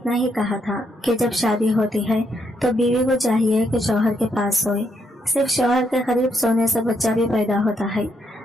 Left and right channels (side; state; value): both; normal; correlation 0.76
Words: ही कहा था कि जब शादी होती है तो बीवी को चाहिए कि शौहर के पास सोए। सिर्फ शौहर के करीब सोने से बच्चा भी पैदा होता है।